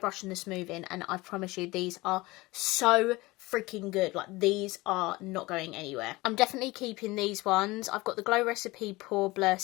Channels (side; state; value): right; quieter; 21.2 dB